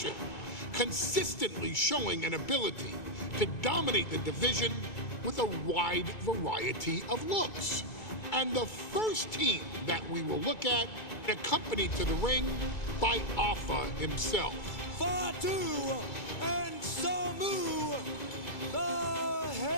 consistently showing an ability to dominate the division with a wide variety of looks. And the first team that we will look at, accompanied to the ring by Afa himself. Fatu and Samu, the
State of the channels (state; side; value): late; right; 2.3 ms